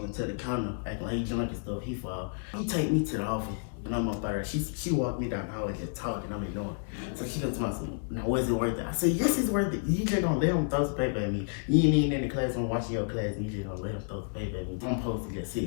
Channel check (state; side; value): silent; right; digital silence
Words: into the counter, acting like he drunk and stuff. He fall. He take me to the office. And I'm up there. She walked me down the hallway just talking. I'm ignoring. So she comes to me, now was it worth it? I said, yes, it's worth it. You just gonna let him throw some paper at me. You ain't even in the class, I'm watching your class, and you just gonna let him throw some paper at me. I'm supposed to just sit